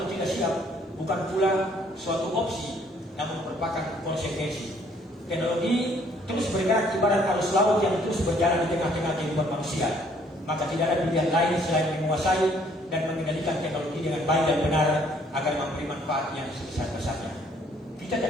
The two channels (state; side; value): normal; both; correlation 0.63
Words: tidak siap, bukan pula suatu opsi, namun merupakan konsekuensi. Teknologi terus bergerak ibarat arus laut yang terus berjalan di tengah-tengah kehidupan manusia. Maka tidak ada pilihan lain selain menguasai dan mengendalikan teknologi dengan baik dan benar agar memberi manfaat yang sebesar-besarnya. Kita